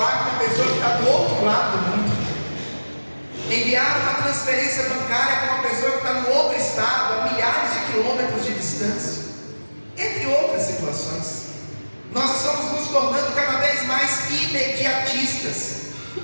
com uma pessoa que está do outro lado do mundo, enviar uma transferência bancária para uma pessoa que está no outro estado, a milhares de quilômetros de distância, entre outras situações. Nós estamos nos tornando cada vez mais imediatistas,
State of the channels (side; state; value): both; inverted; correlation -1.00